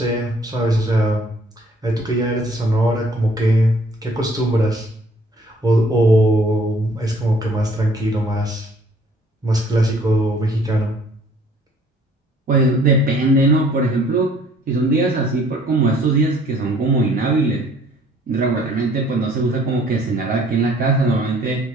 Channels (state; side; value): normal; both; correlation 0.58